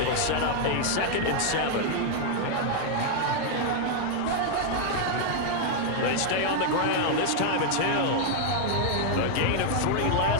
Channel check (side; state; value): both; different; correlation 0.00